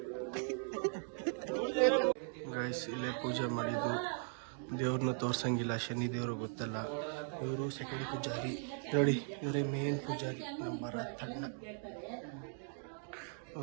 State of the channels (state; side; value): silent; left; 52 dB below the other